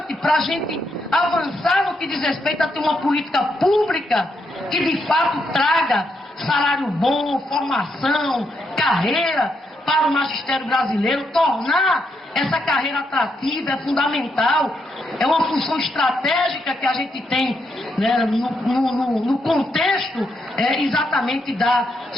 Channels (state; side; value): normal; both; correlation 0.79